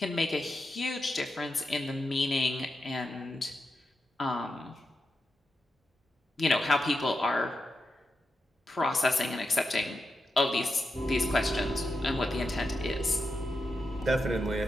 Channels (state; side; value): normal; both; correlation 0.88